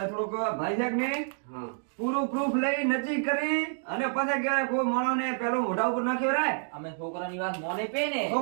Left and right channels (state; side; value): silent; left; digital silence